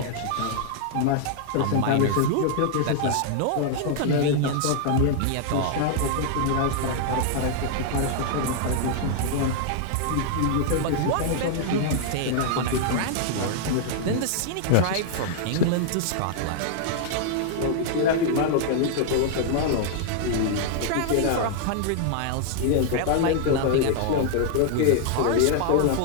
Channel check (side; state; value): both; different; correlation -0.01